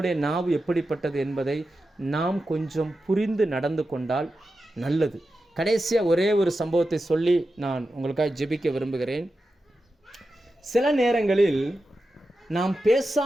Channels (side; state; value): both; normal; correlation 0.91